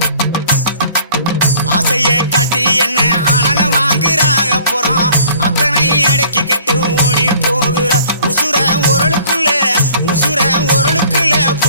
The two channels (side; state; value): both; inverted; correlation -0.53